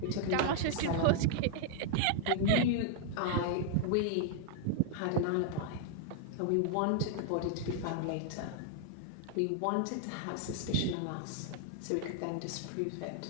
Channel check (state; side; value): different; both; correlation 0.00